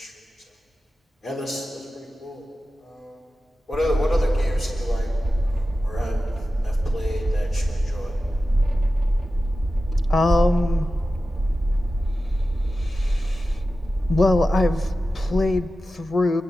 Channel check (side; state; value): both; normal; correlation 0.94